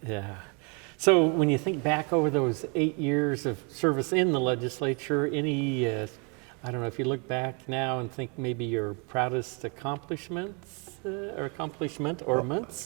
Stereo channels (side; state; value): left; quieter; 34.4 dB